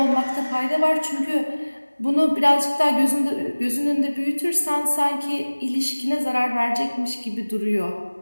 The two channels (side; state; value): both; inverted; correlation -1.00